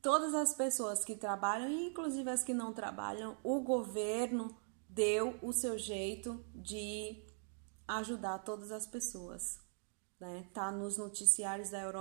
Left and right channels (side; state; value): left; silent; 51 dB below the other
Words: as pessoas que trabalham, inclusive as que não trabalham, o governo deu o seu jeito de ajudar todas as pessoas, né? Tá nos noticiários da